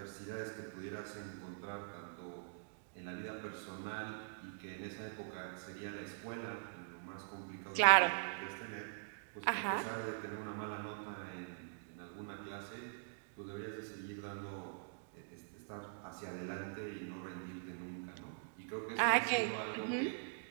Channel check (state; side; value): silent; left; digital silence